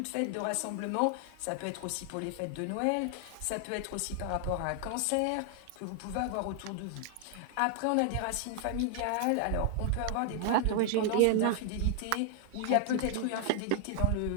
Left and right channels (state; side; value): different; both; correlation 0.00